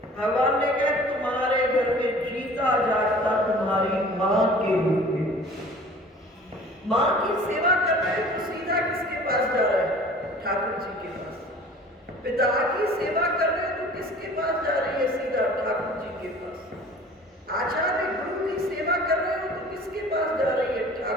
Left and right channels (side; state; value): both; normal; correlation 0.46